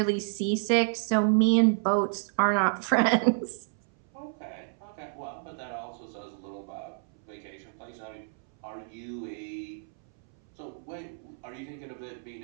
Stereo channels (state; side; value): silent; left; 58 dB below the other